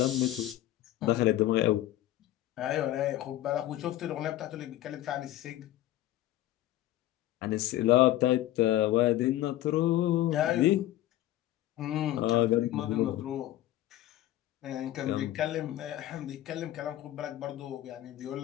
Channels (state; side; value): quieter; right; 14.3 dB